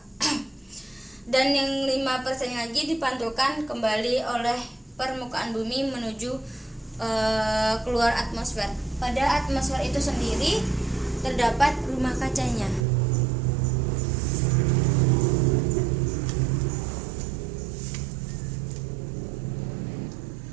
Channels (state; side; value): drops out; left; at 12.9 s